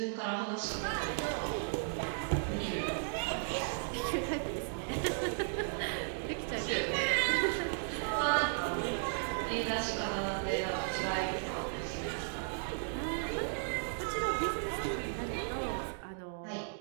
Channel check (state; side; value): silent; left; digital silence